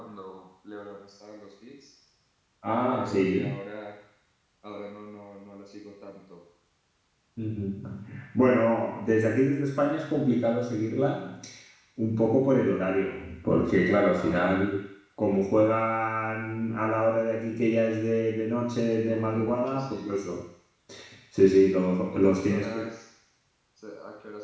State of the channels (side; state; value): both; identical; correlation 1.00